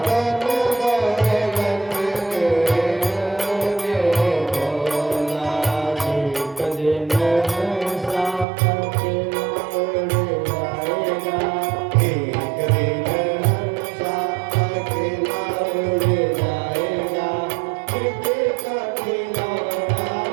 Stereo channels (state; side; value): drops out; left; at 8.5 s